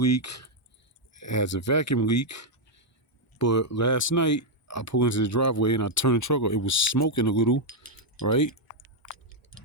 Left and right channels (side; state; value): both; normal; correlation -0.01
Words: it has a vacuum leak, but last night I pulled into the driveway and I turned the truck on. It was smoking a little, right?